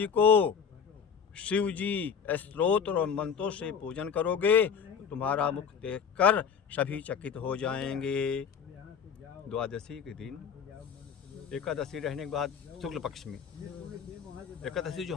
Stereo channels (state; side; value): quieter; right; 6.9 dB